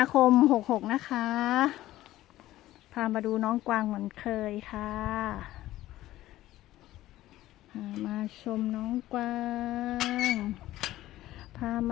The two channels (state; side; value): quieter; right; 15.2 dB